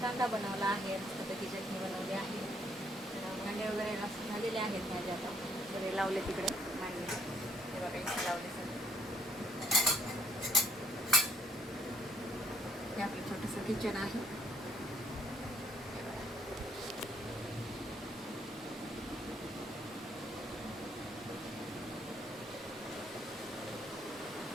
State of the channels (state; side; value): normal; both; correlation 0.67